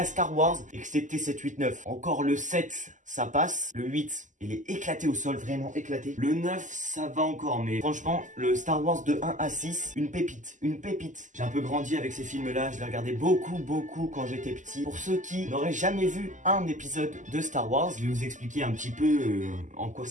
Star Wars, excepté 7, 8, 9. Encore le 7, ça passe. Le 8, il est éclaté au sol, vraiment éclaté. Le 9, ça va encore, mais franchement, le Star Wars de 1 à 6, une pépite, une pépite. J'ai un peu grandi avec ces films-là, je les regardais beaucoup quand j'étais petit. Pour ceux qui n'auraient jamais vu un épisode de Star Wars, je vais vous expliquer un petit peu en quoi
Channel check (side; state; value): left; late; 0.37 ms